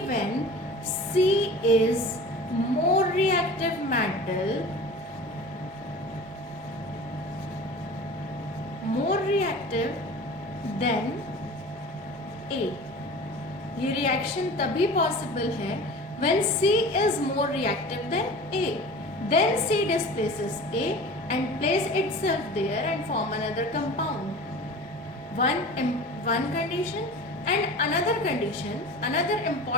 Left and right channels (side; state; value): both; normal; correlation 0.38